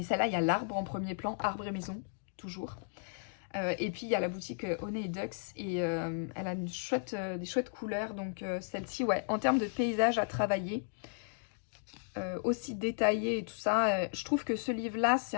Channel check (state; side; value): silent; right; digital silence